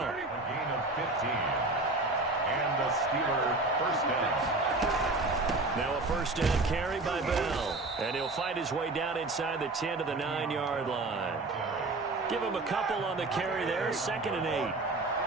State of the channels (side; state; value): left; quieter; 3.1 dB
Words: A gain of 15. And the Steeler 1st down. Now a 1st down carry by Bell. And he'll fight his way down inside the 10 to the 9-yard line. Give him a couple on the carry there. 2nd and 8.